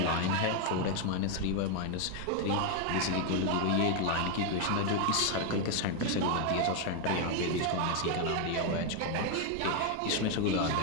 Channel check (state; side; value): different; both; correlation 0.01